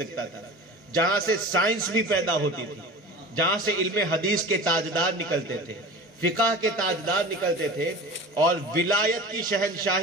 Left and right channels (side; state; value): both; normal; correlation 0.36